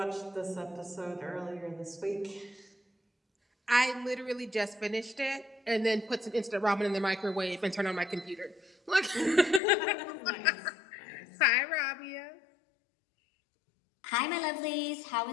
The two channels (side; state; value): right; drops out; at 9.6 s